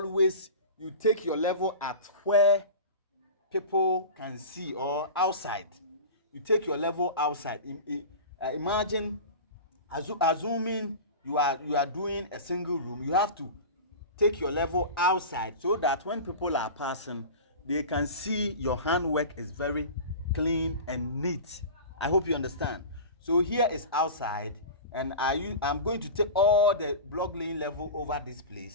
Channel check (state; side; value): inverted; both; correlation -0.32